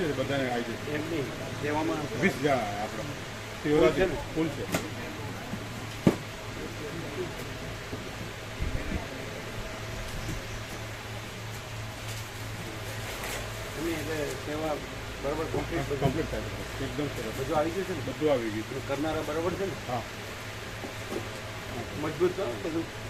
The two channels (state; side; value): identical; both; correlation 1.00